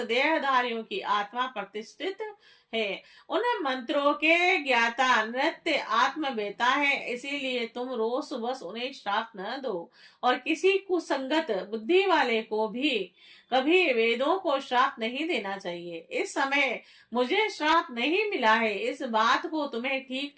की आत्मा प्रतिष्ठित है। उन मंत्रों के ज्ञाता नृत्य आत्मवेता है, इसीलिए तुम रोष बस उन्हें श्राप न दो और किसी कुसंगत बुद्धि वाले को भी कभी वेदों को श्राप नहीं देना चाहिए। इस समय मुझे श्राप नहीं मिला है, इस बात को तुम्हें ठीक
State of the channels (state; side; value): identical; both; correlation 1.00